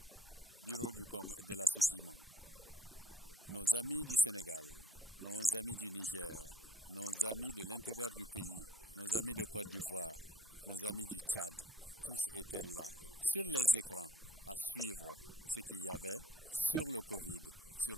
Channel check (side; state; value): both; normal; correlation 0.58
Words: bureau de la Sochima, nos amis du Sénégal, nos amis du Niger, nos amis de l'intérieur du pays, nos amis de Côte d'Ivoire, nos amis du Tchad, tous étaient là, sur les écrans, à suivre ce qu'il y avait sur le Covid, sur